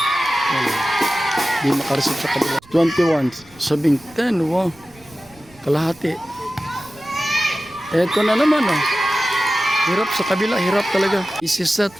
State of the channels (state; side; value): noise; right; rumble, 26 dB below the sound